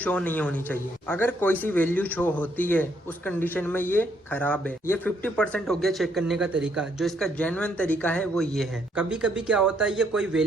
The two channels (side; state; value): both; normal; correlation 0.71